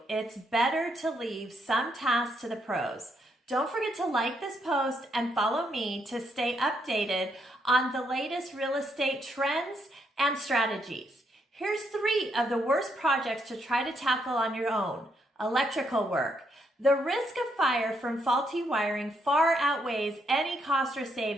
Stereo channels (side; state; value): both; normal; correlation 0.76